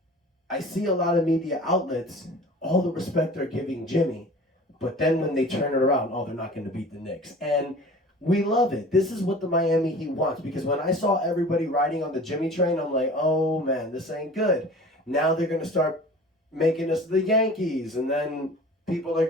I see a lot of media outlets, all the respect they're giving Jimmy, but then when they turn it around, they're not going to beat the Knicks. And we love it. This is what the Miami Heat wants, because when I saw everybody riding on the Jimmy train, I'm like, oh man, this ain't good. Now they're going to start making us the Yankees, and then people are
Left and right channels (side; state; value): both; normal; correlation 0.42